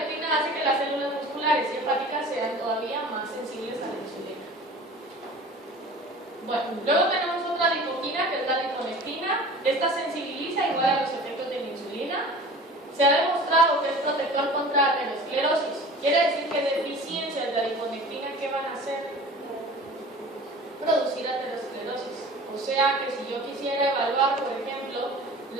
hace que las células musculares y hepáticas sean todavía más sensibles a la insulina. Bueno, luego tenemos otra adipoquina que es la adiponectina. Esta sensibiliza igual a los efectos de la insulina. Se ha demostrado que es protector contra aterosclerosis. Quiere decir que deficiencias de adiponectina, ¿qué van a hacer? Producir aterosclerosis. O sea que si yo quisiera evaluar, por ejemplo,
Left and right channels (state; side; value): normal; both; correlation 0.41